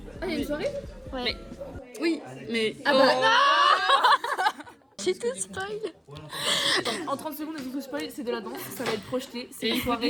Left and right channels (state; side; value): identical; both; correlation 1.00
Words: Ah, il y a une soirée? Ouais. Oui, mais. Ah bah J'ai tout spoil. En 30 secondes, il faut spoil, c'est de la danse, ça va être projeté. C'est une soirée.